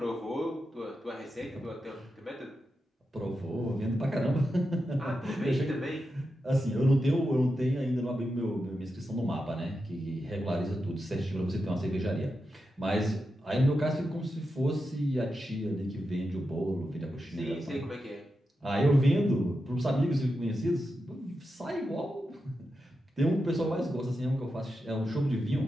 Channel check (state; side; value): normal; both; correlation 0.88